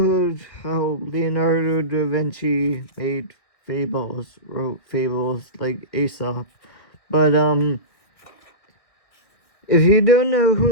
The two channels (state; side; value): late; right; 1.7 ms